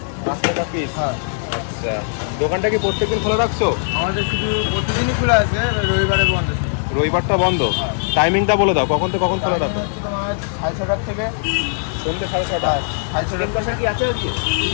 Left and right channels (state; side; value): silent; right; digital silence